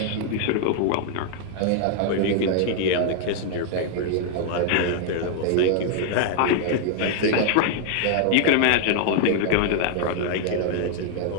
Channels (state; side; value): different; both; correlation 0.00